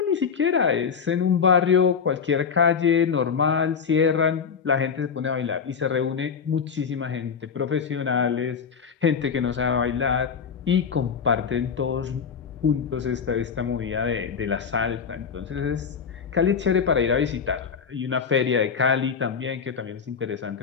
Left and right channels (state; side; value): quieter; right; 6.4 dB